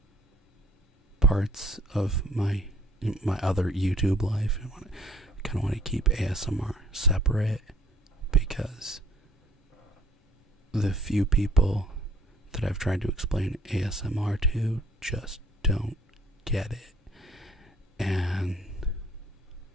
parts of my other YouTube life. I kind of want to keep ASMR separate, because the few people that I've tried to explain ASMR to just don't get it. And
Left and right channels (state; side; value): normal; both; correlation 0.57